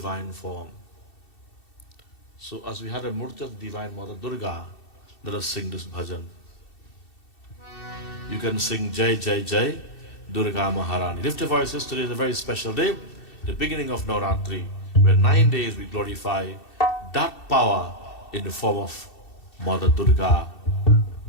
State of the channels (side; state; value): right; late; 2.7 ms